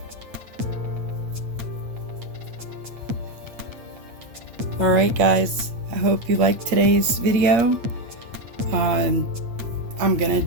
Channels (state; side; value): late; left; 8.6 ms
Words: Alright guys, I hope you liked today's video. I'm gonna